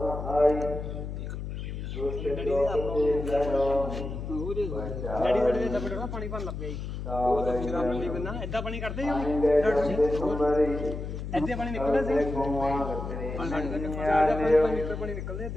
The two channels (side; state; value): left; noise; hum, 6 dB below the sound